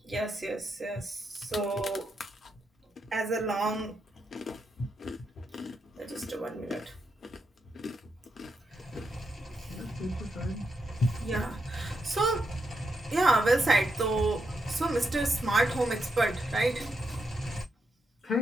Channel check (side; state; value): both; normal; correlation 0.83